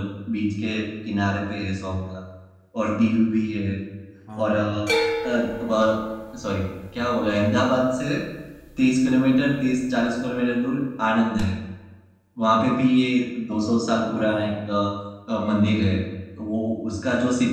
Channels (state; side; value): identical; both; correlation 1.00